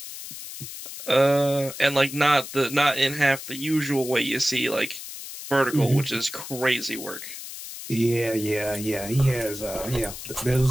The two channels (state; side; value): noise; left; hiss, 11 dB below the sound